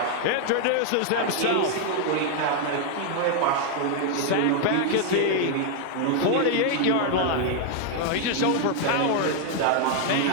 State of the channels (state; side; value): different; both; correlation 0.00